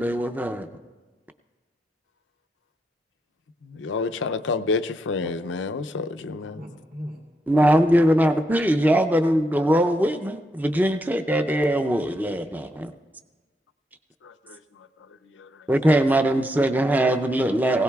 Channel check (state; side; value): normal; both; correlation 0.80